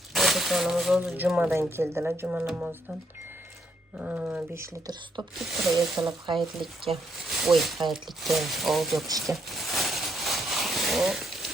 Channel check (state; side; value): normal; both; correlation 0.74